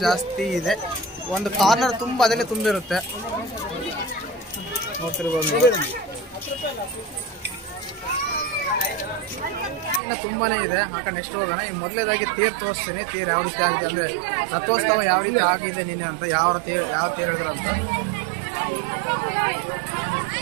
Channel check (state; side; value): drops out; left; at 10.0 s